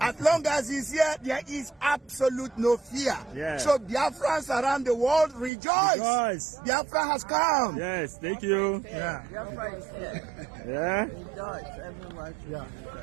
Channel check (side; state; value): left; drops out; at 5.5 s